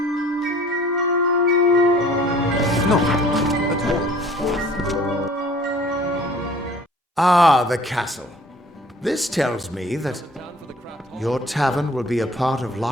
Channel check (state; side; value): normal; both; correlation 0.51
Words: No, at all. Ah, the castle. This tells me that your tavern will be a part of